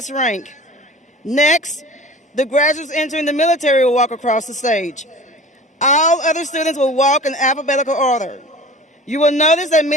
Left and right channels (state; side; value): normal; both; correlation 0.40